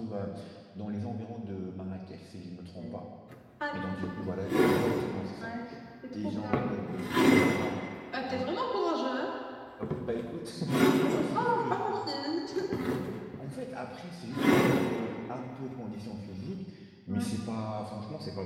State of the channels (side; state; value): both; identical; correlation 1.00